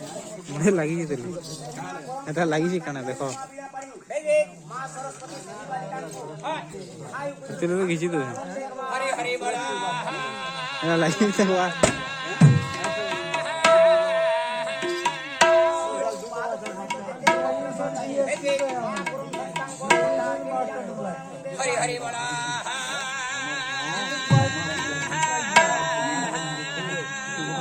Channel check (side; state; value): both; identical; correlation 1.00